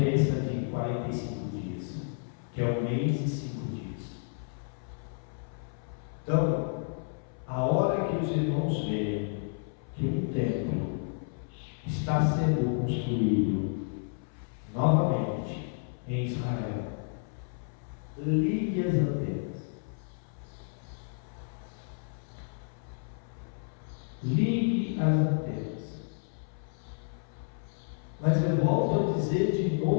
de 45 dias, que é 1 mês e 5 dias. Então, a hora que os irmãos veem que um templo está sendo construído novamente em Israel, ligue as antenas. Ligue as antenas. Mas eu volto a dizer de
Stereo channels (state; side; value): silent; right; 57 dB below the other